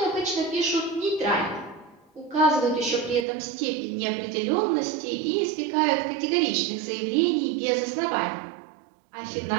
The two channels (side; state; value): left; drops out; at 3.2 s